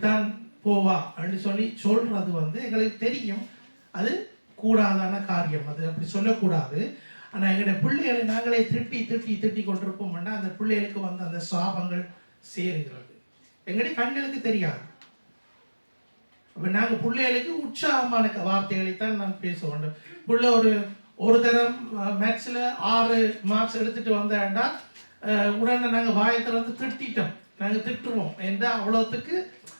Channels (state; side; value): inverted; both; correlation -1.00